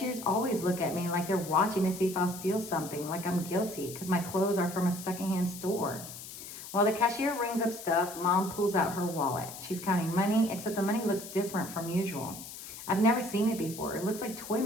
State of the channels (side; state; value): left; noise; hiss, 12 dB below the sound